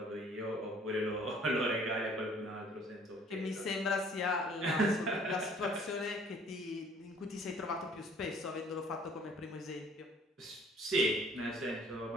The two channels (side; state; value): both; normal; correlation 0.55